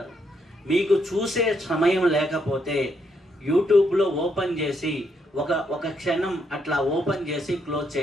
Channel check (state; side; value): normal; both; correlation 0.76